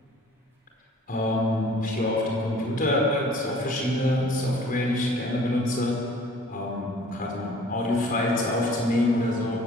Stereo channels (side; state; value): both; normal; correlation 0.52